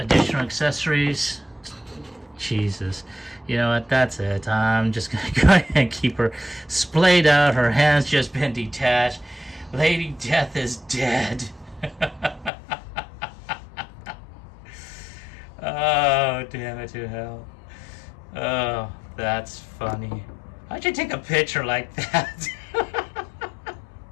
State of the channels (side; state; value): right; drops out; at 12.5 s